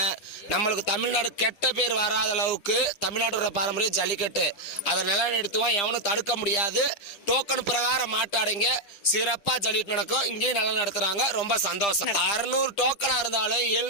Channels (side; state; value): right; late; 10 ms